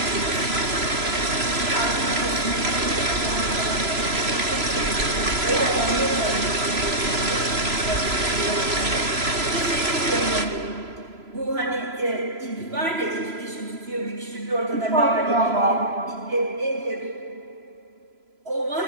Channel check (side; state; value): left; late; 3.0 ms